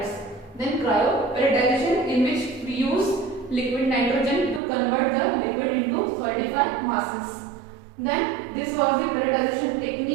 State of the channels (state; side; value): drops out; left; at 4.6 s